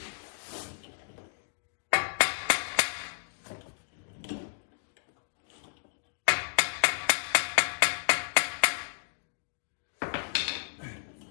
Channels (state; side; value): silent; right; digital silence